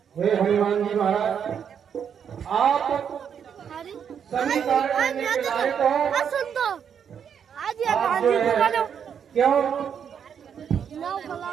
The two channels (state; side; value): quieter; left; 7.8 dB